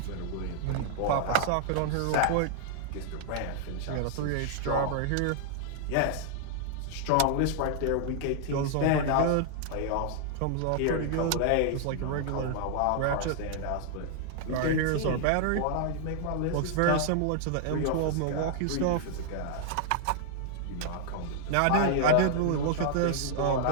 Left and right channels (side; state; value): both; different; correlation -0.01